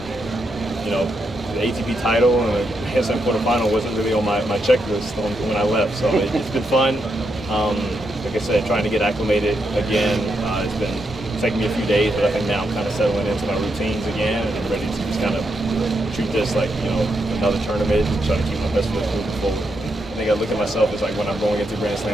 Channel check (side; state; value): both; normal; correlation 0.82